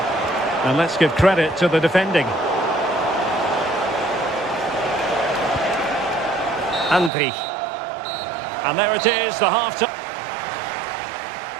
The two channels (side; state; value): left; drops out; at 7.1 s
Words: And let's give credit to the defending. Andri. And there it is, the half-time.